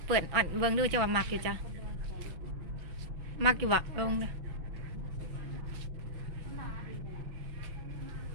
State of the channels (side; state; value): left; late; 6.0 ms